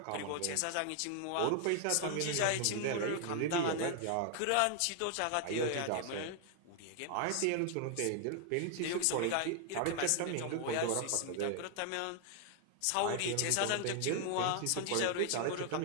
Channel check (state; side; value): different; both; correlation 0.00